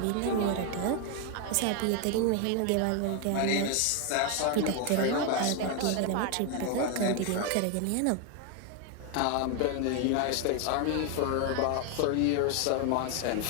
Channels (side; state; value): both; different; correlation 0.01